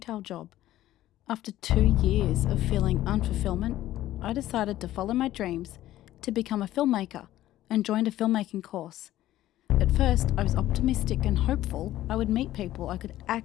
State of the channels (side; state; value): right; quieter; 14.2 dB